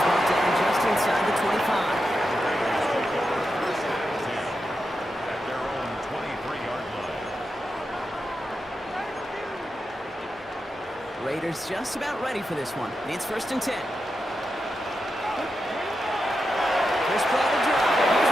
brought down just inside the 25. At their own 23-yard line. Raiders just about ready for this one. It's 1st and 10. First play of the drive. Here's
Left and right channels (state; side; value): normal; both; correlation 0.88